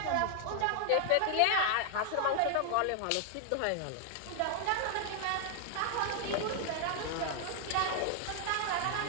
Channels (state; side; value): different; both; correlation 0.00